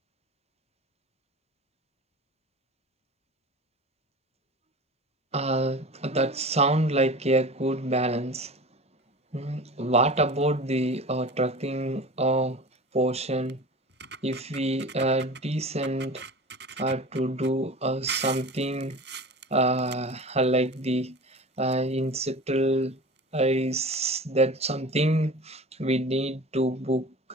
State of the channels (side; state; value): both; normal; correlation 0.35